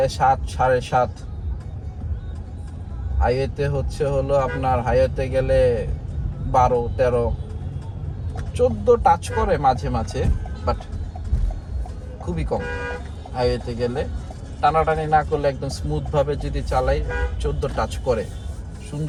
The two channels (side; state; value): both; identical; correlation 1.00